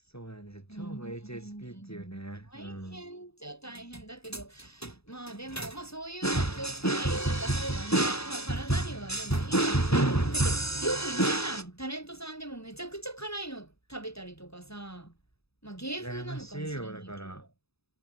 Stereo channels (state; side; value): late; right; 0.78 ms